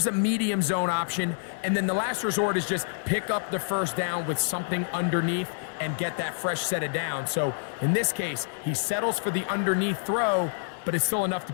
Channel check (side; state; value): right; silent; digital silence